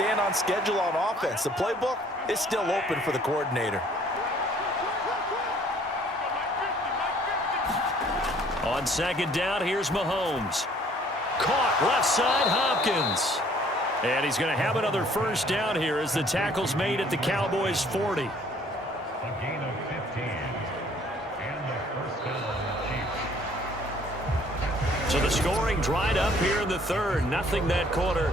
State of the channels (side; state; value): both; normal; correlation 0.58